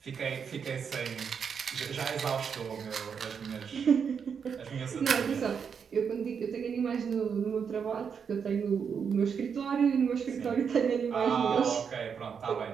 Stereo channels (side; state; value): left; quieter; 6.7 dB